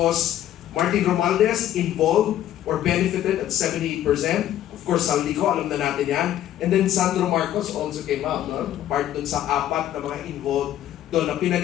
Martin Romualdez, involved or benefited at 78%. Of course, Saldico, alam na natin yan. And then Sandro Marcos also came out, no? Part dun sa 4 na mga involved doon na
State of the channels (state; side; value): quieter; right; 12.0 dB